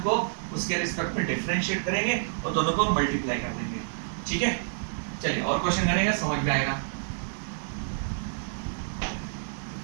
को उसके रिस्पेक्ट में डिफरेंशिएट करेंगे और दोनों को मल्टीप्लाई कर देंगे, ठीक है। चलिए और क्वेश्चन करेंगे, समझ में आएगा।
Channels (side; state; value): left; silent; digital silence